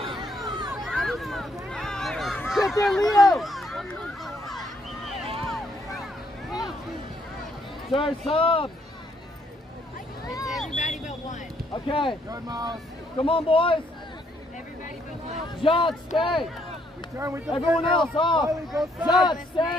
Get there, Leo. Sorry, sub. It's everybody but one. Okay. Good, Miles. Come on, boys. Everybody but one. John, stay. Return with the Everyone field. else off. Riley, go John, side.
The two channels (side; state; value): both; normal; correlation 0.71